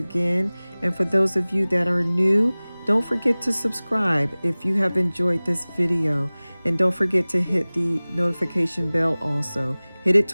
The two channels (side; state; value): both; inverted; correlation -1.00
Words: And for those of you that are new, don't forget to subscribe if you have enjoyed this video. And don't forget to hit the notification bell also. Hit it